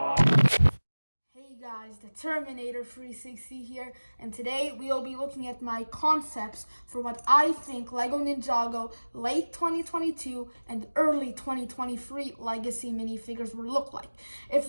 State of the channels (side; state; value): both; inverted; correlation -1.00